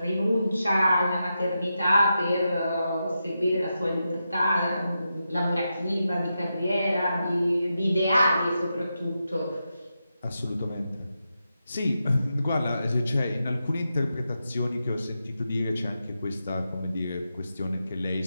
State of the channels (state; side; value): inverted; both; correlation -0.88